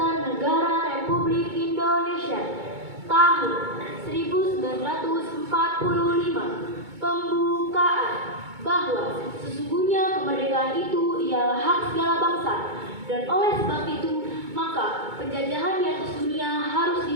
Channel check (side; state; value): left; late; 2.2 ms